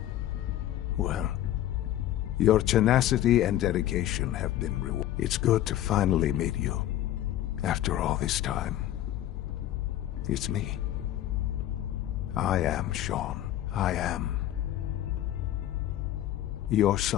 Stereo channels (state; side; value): quieter; right; 13.0 dB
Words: Well, your tenacity and dedication have been rewarded. It's good to finally meet you, after all this time. It's me. I am Sean. I am your